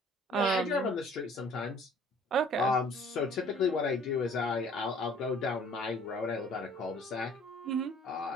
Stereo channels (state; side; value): normal; both; correlation 0.53